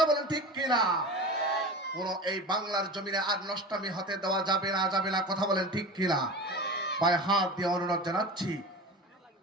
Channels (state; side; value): normal; both; correlation 0.32